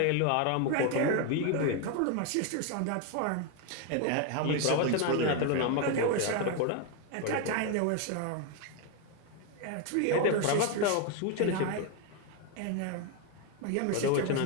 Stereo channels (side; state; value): both; different; correlation 0.01